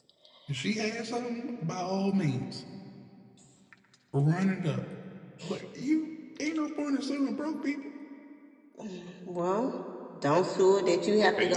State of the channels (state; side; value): identical; both; correlation 1.00